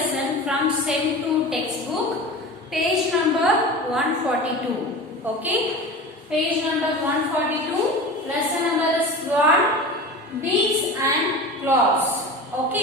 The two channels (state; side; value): normal; both; correlation 0.32